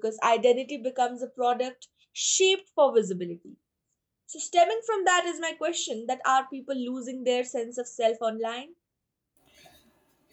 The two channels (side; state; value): both; identical; correlation 1.00